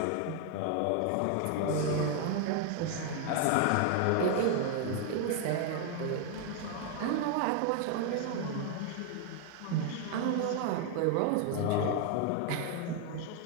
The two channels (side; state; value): both; different; correlation 0.00